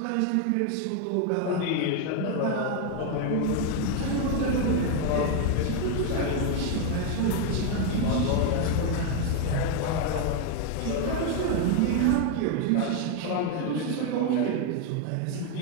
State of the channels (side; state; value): both; different; correlation 0.01